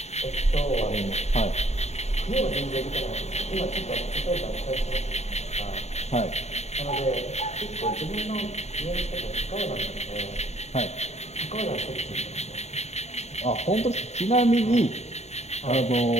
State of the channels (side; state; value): right; late; 0.32 ms